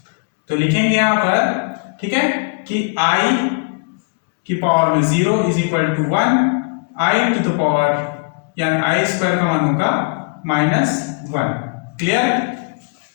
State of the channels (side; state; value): right; quieter; 31.0 dB